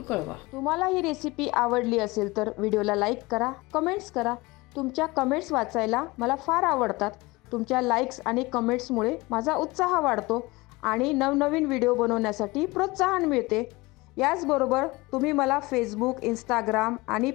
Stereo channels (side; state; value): right; quieter; 22.6 dB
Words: कळवा. तुम्हाला ही रेसिपी आवडली असेल तर व्हिडिओला लाईक करा, कमेंट्स करा. तुमच्या कमेंट्स वाचायला मला फार आवडतात. तुमच्या लाईक्स आणि कमेंट्समुळे माझा उत्साह वाढतो आणि नवनवीन व्हिडिओ बनवण्यासाठी प्रोत्साहन मिळते. याचबरोबर तुम्ही मला फेसबुक, इंस्टाग्राम आणि